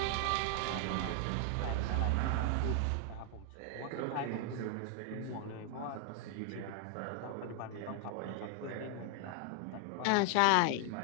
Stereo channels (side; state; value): both; different; correlation 0.00